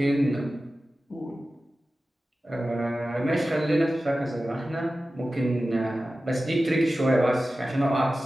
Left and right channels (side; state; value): both; normal; correlation 0.95